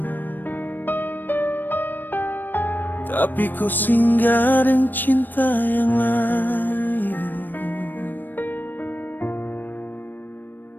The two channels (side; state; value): right; late; 0.091 ms